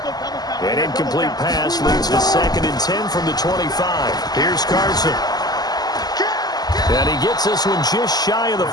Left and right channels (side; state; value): right; late; 0.19 ms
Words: An incomplete pass leads to 2nd and 10 from the 25. Here's Carson. And he gets this one just shy of the